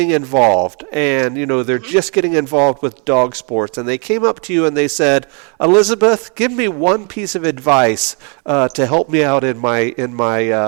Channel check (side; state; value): left; quieter; 36.4 dB